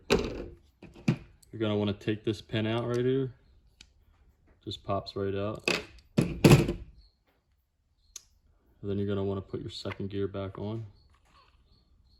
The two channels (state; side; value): identical; both; correlation 1.00